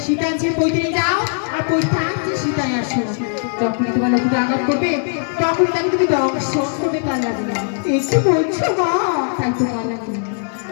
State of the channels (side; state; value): right; silent; 61 dB below the other